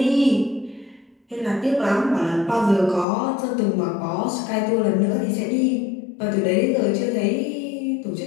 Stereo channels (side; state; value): right; drops out; at 3.1 s